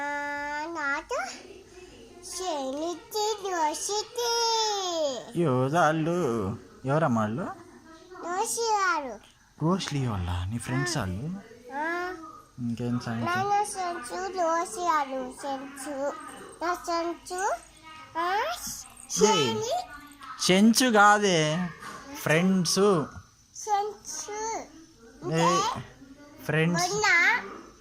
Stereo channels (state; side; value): identical; both; correlation 1.00